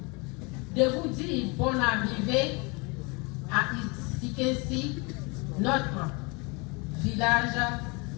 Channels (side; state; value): right; quieter; 29.2 dB